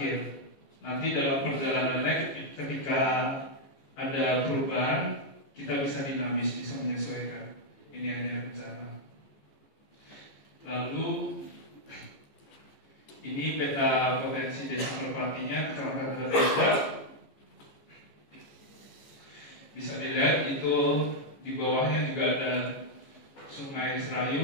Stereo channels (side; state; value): right; late; 14 ms